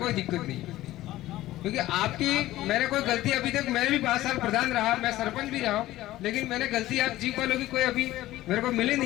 दिक्कत नहीं। क्योंकि आपकी, मैंने कोई गलती अभी तक, मैंने भी 5 साल प्रधान रहा, मैं सरपंच भी रहा हूँ, लेकिन मैंने गलती आप जीप वालों की कोई अभी मेरे को मिली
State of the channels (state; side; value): quieter; right; 15.8 dB